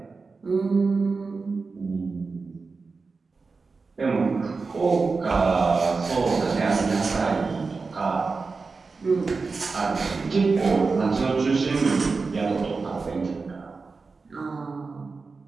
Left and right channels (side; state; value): left; quieter; 4.3 dB